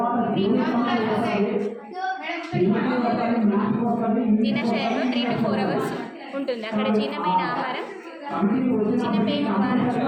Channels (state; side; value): identical; both; correlation 1.00